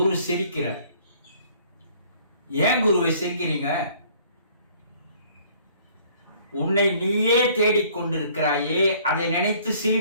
சிரிக்கிறார். ஏன் குருவை சிரிக்கிறீங்க? உன்னை நீயே தேடிக்கொண்டிருக்கிறாயே, அதை நினைத்து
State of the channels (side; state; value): both; inverted; correlation -0.57